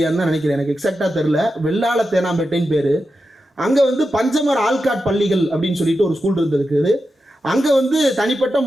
தான் நினைக்கிறேன், எனக்கு எக்ஸாக்டாக தெரில. வெள்ளாள தேனாம்பேட்டைன்னு பேர். அங்கே வந்து பஞ்சமர் ஆல்காட் பள்ளிகள் அப்படின்னு சொல்லிட்டு ஒரு ஸ்கூல் இருந்திருக்குது. அங்கே வந்து தனிப்பட்ட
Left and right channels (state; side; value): normal; both; correlation 0.89